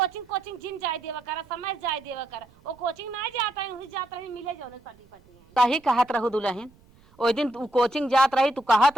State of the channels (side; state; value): right; noise; rumble, 28 dB below the sound